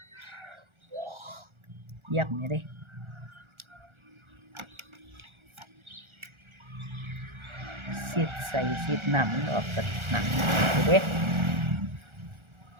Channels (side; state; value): left; late; 1.4 ms